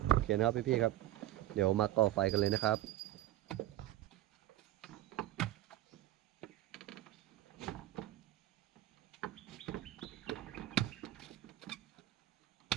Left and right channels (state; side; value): quieter; left; 14.4 dB